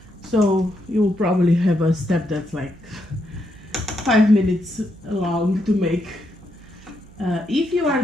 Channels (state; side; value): noise; right; hum, 23 dB below the sound